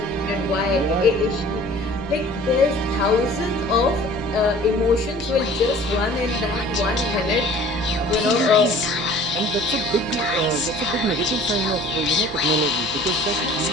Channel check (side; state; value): both; normal; correlation 0.48